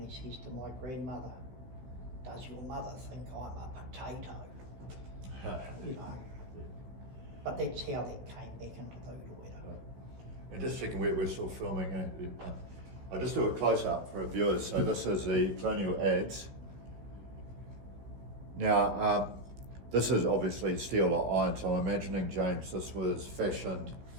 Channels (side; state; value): left; late; 15 ms